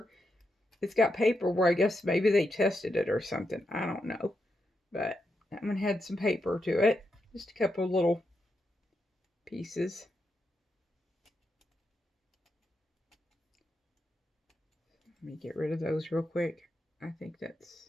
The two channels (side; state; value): both; normal; correlation 0.84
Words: it's got paper where I guess maybe they tested it or something. I don't know. But that one had some paper to it. Just a couple of little pieces. Let me get rid of those real quick. I think